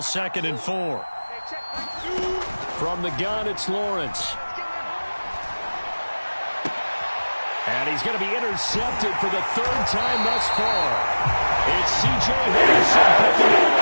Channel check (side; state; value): both; inverted; correlation -1.00